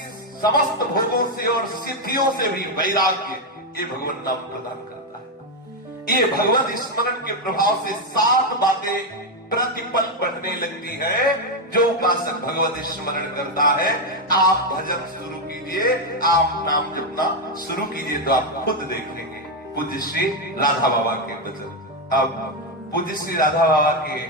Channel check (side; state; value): both; normal; correlation 0.05